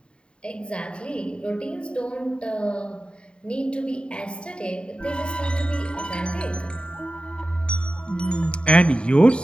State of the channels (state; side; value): late; right; 0.053 ms